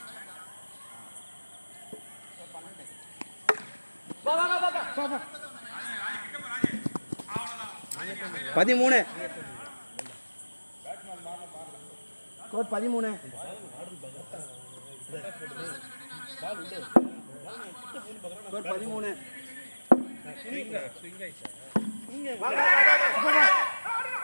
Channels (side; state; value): both; inverted; correlation -1.00